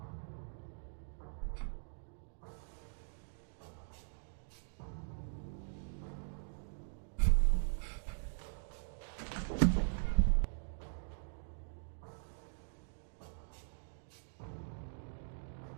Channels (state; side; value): silent; left; digital silence